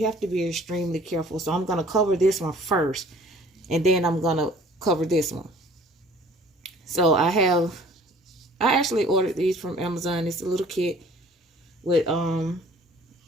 have to be extremely careful. So I'm going to cover this one first, and then I'm going to cover this one. So I actually ordered these from Amazon. It's a little kit with,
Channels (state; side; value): normal; both; correlation 0.52